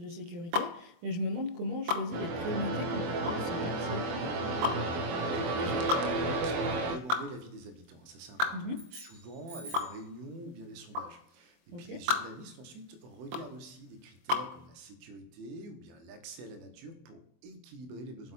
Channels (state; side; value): late; left; 24 ms